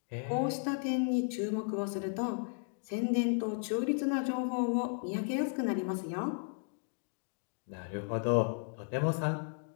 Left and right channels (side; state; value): right; silent; 55 dB below the other